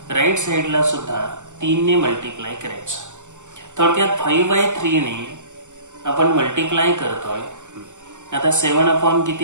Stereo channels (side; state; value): left; late; 0.85 ms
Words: राईट साइडला सुद्धा 3 ने मल्टिप्लाय करायचं. थोडक्यात 5/3 ने आपण मल्टिप्लाय करतोय. आता 7